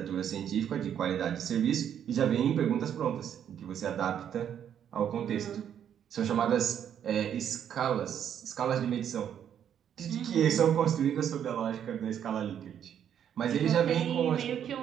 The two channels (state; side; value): quieter; left; 9.2 dB